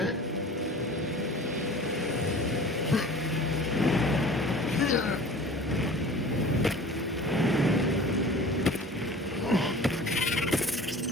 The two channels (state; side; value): normal; both; correlation 0.42